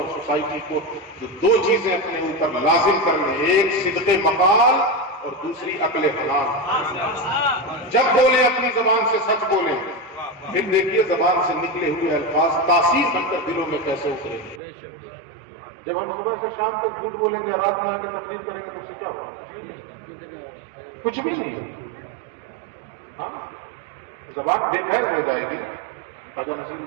سوسائٹی کو، تو دو چیزیں اپنے اوپر لازم کر لیں، ایک صدق مقال اور دوسری عقل حلال۔ جب بولیں اپنی زبان سے سچ بولیں، پھر دیکھیے زبان سے نکلے ہوئے الفاظ تاثیر بن کر دلوں میں کیسے اتریں گے۔ جب ہم صبح سے شام تک جھوٹ بولیں گے، رات میں آ کے تقریر کریں گے تو اس سے کیا ہوگا؟ کچھ بھی نہیں۔ ہاں زبان بے فیض ہو جائے گی نا۔ خواجہ نصیر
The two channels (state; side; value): drops out; left; at 14.6 s